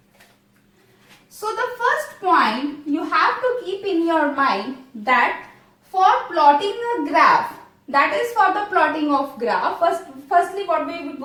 So the first point you have to keep in your mind that for plotting a graph, that is for the plotting of graph, firstly what we are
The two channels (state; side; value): identical; both; correlation 1.00